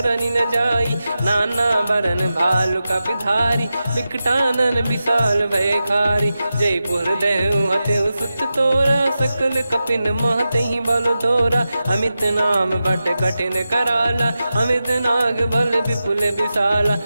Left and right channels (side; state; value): both; inverted; correlation -0.92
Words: न जाई। नाना बरन भालु कपिधारी, विकटानन विशाल भयकारी। जयपुर देहु हतेउ सुत तोरा, सकल कपिन महतहि बल तोरा। अमित नाम बट कठिन कराला, अमित नाग बल विपुल विशाला।